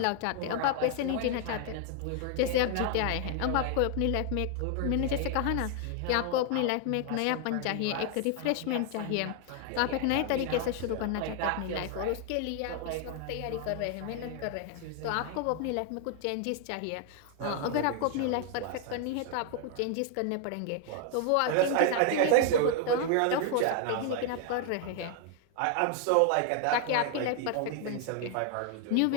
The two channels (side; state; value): both; different; correlation 0.00